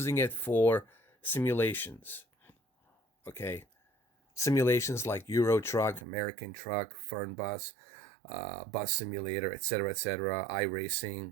it for simulations, okay? Simulations like Euro Truck, American Truck, Fern Bus, Bus Simulator, etc.,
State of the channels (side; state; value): left; drops out; at 6.1 s